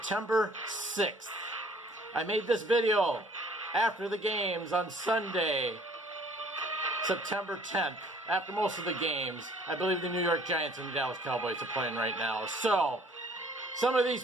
6th. I made this video after the games on Sunday, September 10th, after most of the games. I believe the New York Giants and the Dallas Cowboys are playing right now. So, some of these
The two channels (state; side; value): normal; both; correlation 0.56